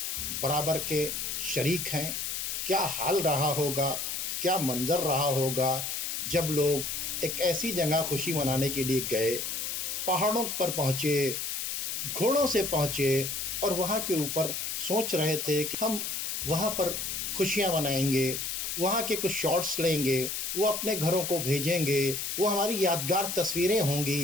برابر کے شریک ہیں۔ کیا حال رہا ہوگا، کیا منظر رہا ہوگا جب لوگ ایک ایسی جگہ خوشی منانے کے لیے گئے، پہاڑوں پر پہنچے، گھوڑوں سے پہنچے، اور وہاں کے اوپر سوچ رہے تھے کہ ہم وہاں پر خوشیاں منائیں گے، وہاں کے کچھ شارٹس لیں گے، وہ اپنے گھروں کو بھیجیں گے، وہ ہماری یادگار تصویریں ہوں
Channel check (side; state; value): left; noise; hiss, 3 dB below the sound